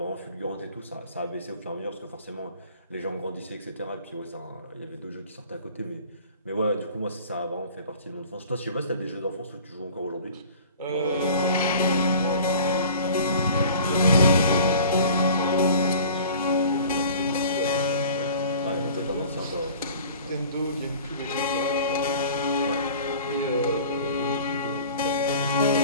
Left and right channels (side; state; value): both; inverted; correlation -0.45